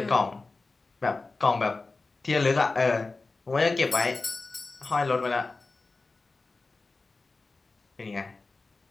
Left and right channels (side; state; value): right; quieter; 3.7 dB